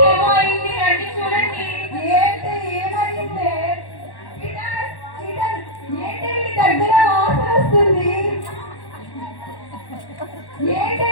ఏమో అయింది, రండి చూడండి. ఏంటి ఏమైంది? ఏంటి వీడి దగ్గర వాసన వస్తుంది? ఏంటి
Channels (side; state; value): right; late; 1.1 ms